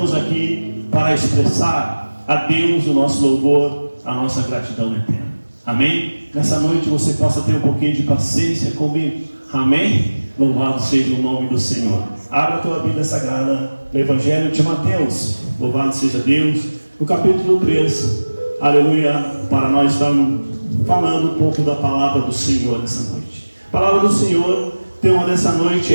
aqui para expressar a Deus o nosso louvor, a nossa gratidão eterna. Amém? Nessa noite você possa ter um pouquinho de paciência comigo. Amém? Louvado seja o nome do Senhor. Abra a tua Bíblia Sagrada no Evangelho de Mateus. Louvado seja Deus. No capítulo 3. Aleluia. Para nós estarmos falando um pouco da palavra do Senhor nessa noite. A palavra do Senhor, tema dessa noite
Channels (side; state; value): both; inverted; correlation -1.00